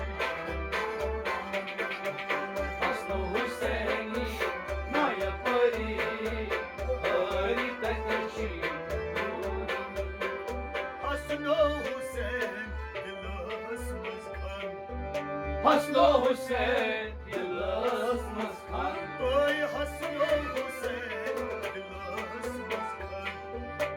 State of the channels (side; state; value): both; identical; correlation 1.00